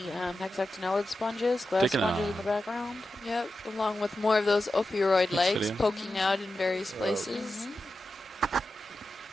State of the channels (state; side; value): normal; both; correlation 0.91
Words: hexactinellid sponges, glass Taking sponges a- in the background. Yep. Along with more of those ophiuroid legs video. poking out in various places.